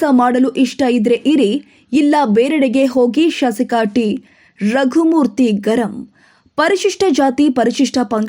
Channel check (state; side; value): identical; both; correlation 1.00